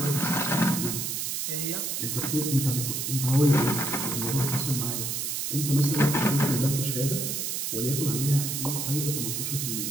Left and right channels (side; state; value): right; noise; hiss, 2 dB below the sound